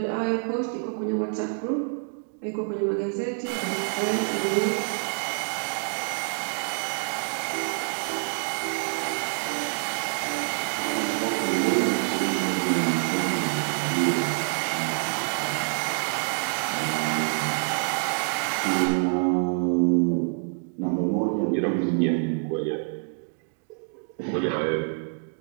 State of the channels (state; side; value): silent; left; 60 dB below the other